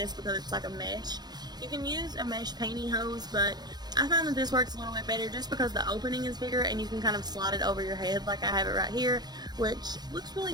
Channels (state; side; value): late; left; 0.20 ms